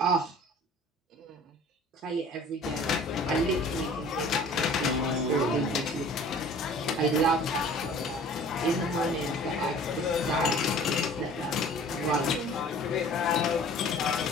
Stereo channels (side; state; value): both; normal; correlation 0.47